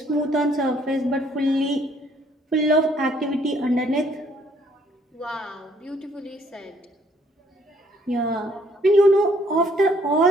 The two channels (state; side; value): normal; both; correlation 0.65